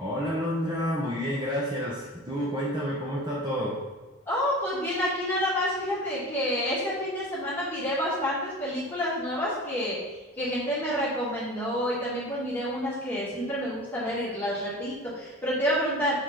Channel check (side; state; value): both; normal; correlation 0.36